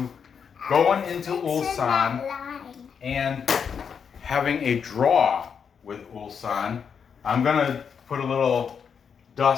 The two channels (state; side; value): quieter; right; 6.8 dB